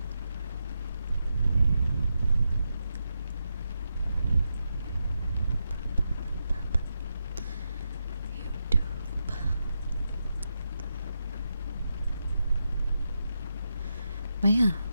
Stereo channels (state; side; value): inverted; both; correlation -0.86